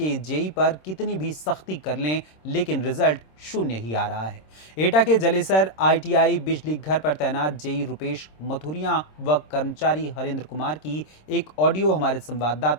जेई पर कितनी भी सख्ती कर लें, लेकिन रिजल्ट शून्य ही आ रहा है। एटा के जलेसर ITI बिजली घर पर तैनात जेई रुपेश मथुरिया व कर्मचारी हरेंद्र कुमार की एक ऑडियो हमारे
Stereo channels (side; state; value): right; late; 26 ms